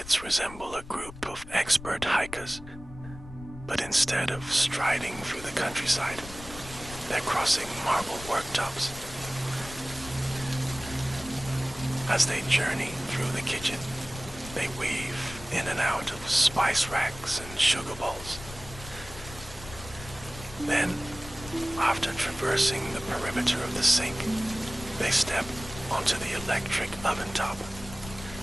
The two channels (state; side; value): noise; left; rumble, 14 dB below the sound